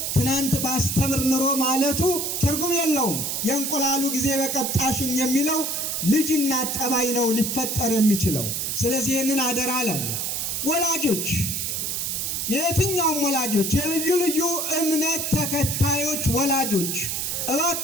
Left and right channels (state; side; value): noise; right; hiss, 2 dB below the sound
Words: ትናንት ባስተምር ኑሮ ማለቱ ትርጉም የለውም። የእንቁላሉ ጊዜ በቀጣሽኝ የሚለው ልጅና ጠባይ ነው ሊፈጠር የሚችለው። ስለዚህ ይህንን አደራ አለን። ወላጆች የትኛውም ወላጆች የልዩ ልዩ እምነት ተከታዮች ወላጆች